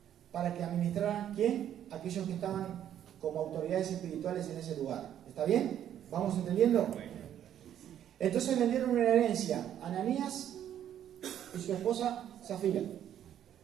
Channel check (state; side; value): quieter; left; 10.4 dB